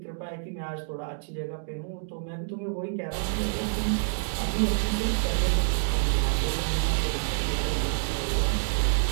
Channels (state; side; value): silent; left; digital silence